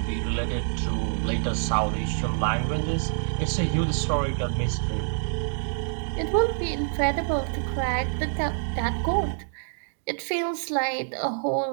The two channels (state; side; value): silent; left; digital silence